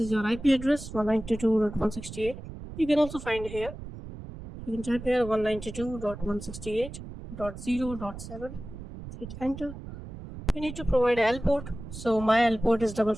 your IP address 192.168. You can also find here. You can type here 192.168.0.7. Hit enter. You need to provide L port. So my L port is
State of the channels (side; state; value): right; noise; rumble, 12 dB below the sound